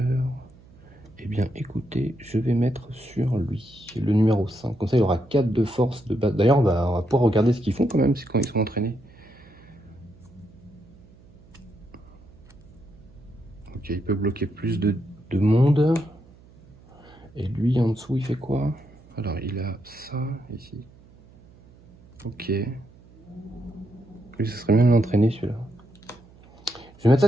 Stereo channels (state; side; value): noise; right; hum, 25 dB below the sound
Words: Eh bien, écoutez, je vais mettre sur lui, le numéro 5. Comme ça, il aura 4 de force de base. D'ailleurs, on va pouvoir regarder ce qu'ils font quand même, c'est quand ils sont entraînés. Ok, il peut bloquer plus de monde. Et lui, en dessous, il fait quoi? Alors, il a ça, ici. Ok. Lui, ce serait bien de l'entraîner, celui-là. Je vais mettre ça